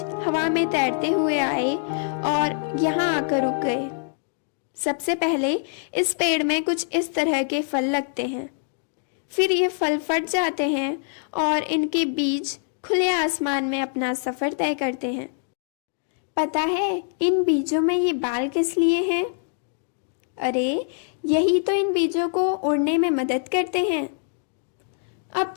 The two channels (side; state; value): right; silent; digital silence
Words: हवा में तैरते हुए आए और यहाँ आकर रुक गए। सबसे पहले इस पेड़ में कुछ इस तरह के फल लगते हैं, फिर ये फल फट जाते हैं और इनके बीज खुले आसमान में अपना सफ़र तय करते हैं। पता है इन बीजों में ये बाल किस लिए हैं? अरे यही तो इन बीजों को उड़ने में मदद करते हैं। अब